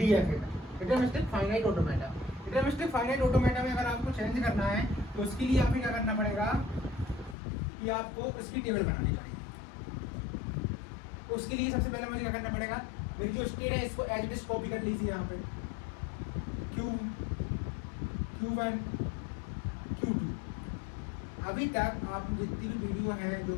में, deterministic finite automata. Deterministic finite automata में अगर आपको चेंज करना है तो उसके लिए आपको क्या करना पड़ेगा कि आपको उसकी टेबल बनानी पड़ेगी। उसके लिए सबसे पहले मुझे क्या करना पड़ेगा, मेरी जो स्टेट है इसको एज इट इज कॉपी कर लीजिए यहाँ पे, Q1 Q2। अभी तक आप जितनी भी वीडियो है जो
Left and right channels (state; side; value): drops out; right; at 7.4 s